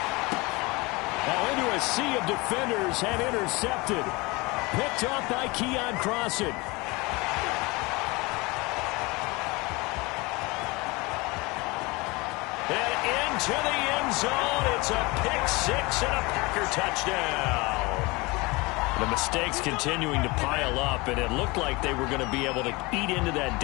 Now into a sea of defenders and intercepted. Picked off by Keon Crossan. And into the end zone. It's a pick 6 and a Packer touchdown. The mistakes continuing to pile up, and it looked like they were going to be able to eat into that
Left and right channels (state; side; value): quieter; right; 24.5 dB